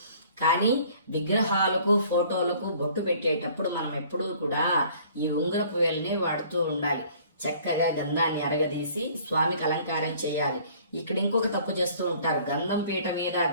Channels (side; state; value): both; inverted; correlation -0.54